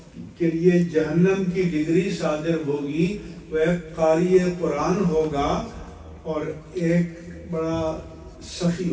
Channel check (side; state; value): both; identical; correlation 1.00